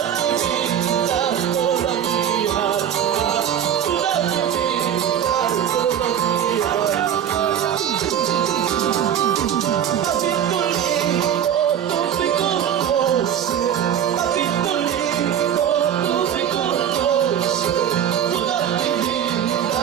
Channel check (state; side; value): quieter; left; 9.5 dB